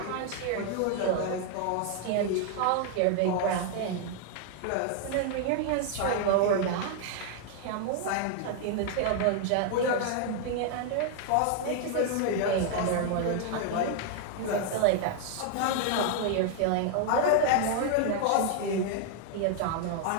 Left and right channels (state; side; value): different; both; correlation 0.00